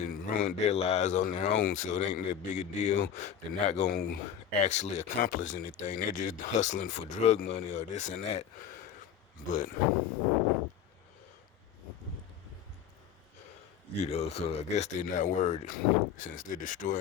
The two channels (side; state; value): right; quieter; 8.8 dB